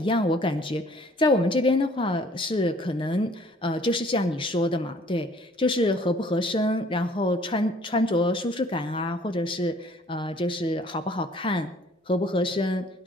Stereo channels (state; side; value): normal; both; correlation 0.57